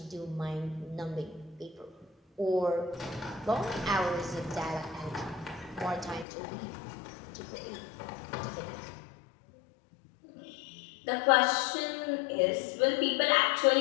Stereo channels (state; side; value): drops out; right; at 6.2 s